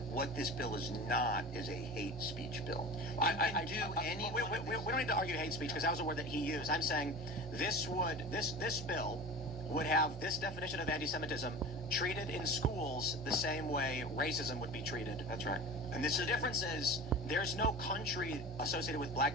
what this bill is not is a hate speech bill. We don't need to argue hate speech because that was a word that he used. I'm saying this bill would have this definition of anti-Semitism treated in schools the same way racism would be treated. That's right. And the difference is there's no country associated with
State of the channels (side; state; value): both; normal; correlation 0.35